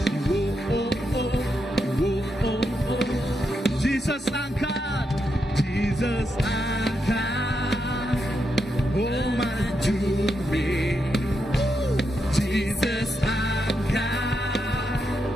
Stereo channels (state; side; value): normal; both; correlation 0.83